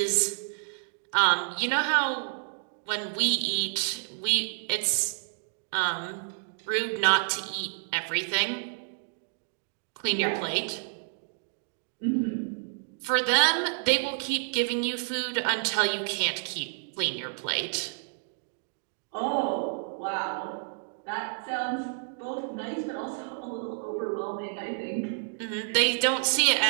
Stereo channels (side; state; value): left; silent; digital silence